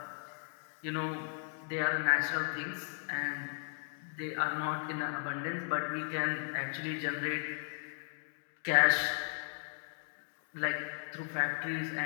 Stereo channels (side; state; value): right; silent; 54 dB below the other